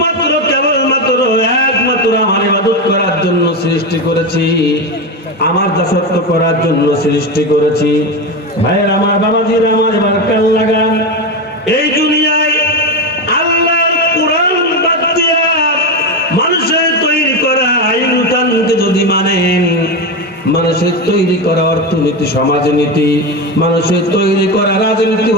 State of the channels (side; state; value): both; normal; correlation 0.16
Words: কেবলমাত্র একমাত্র আমার ইবাদত করার জন্য সৃষ্টি করেছি, আমার দাসত্ব করার জন্য সৃষ্টি করেছি। ভাইয়ের আমার, বাবাজির আমার, এবার কাল লাগান। এই দুনিয়ায় আল্লাহর কোরআন বাদ দিয়া মানুষের তৈরি করা আইন-কানুনকে যদি মানেন, মানুষের তৈরি করা অর্থনীতি, সমাজনীতি, মানুষের তৈরি করা রাজনীতি,